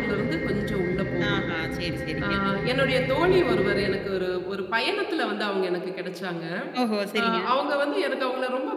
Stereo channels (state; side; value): identical; both; correlation 1.00